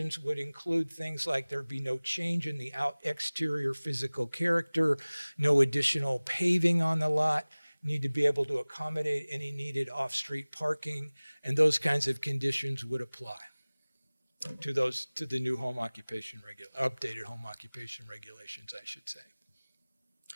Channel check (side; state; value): both; inverted; correlation -1.00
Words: would include things like there be no change in the exterior physical character, no additional paving on the lot, need to be able to accommodate any needed off-street parking, and those kinds of conditions would apply to the new home occupation updated home occupation regulations, I should say.